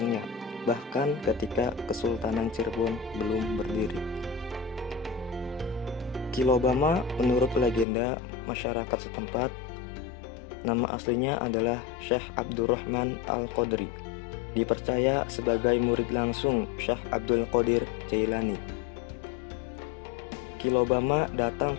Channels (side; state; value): right; drops out; at 7.9 s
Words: bahkan ketika Kesultanan Cirebon belum berdiri. Ki Lobama menurut legenda masyarakat setempat, nama aslinya adalah Syekh Abdurrahman Al-Qadri, dipercaya sebagai murid langsung Syekh Abdul Qadir Jailani. Ki Lobama datang